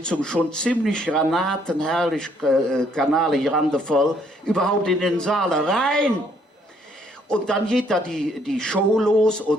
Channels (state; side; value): normal; both; correlation 0.67